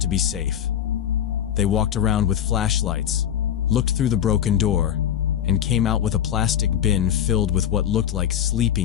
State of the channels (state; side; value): quieter; right; 10.0 dB